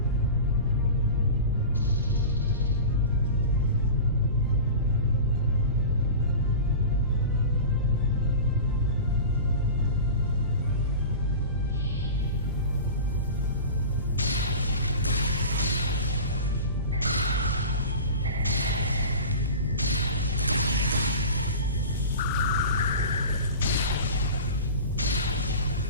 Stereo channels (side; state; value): both; inverted; correlation -0.33